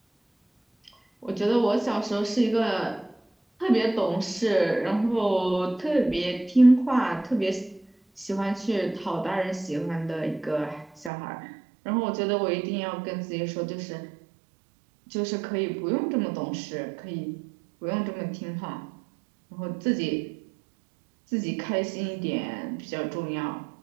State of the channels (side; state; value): left; drops out; at 11.1 s